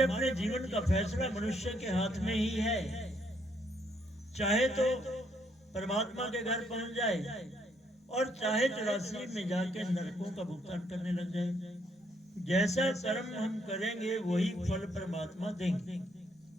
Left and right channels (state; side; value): normal; both; correlation 0.71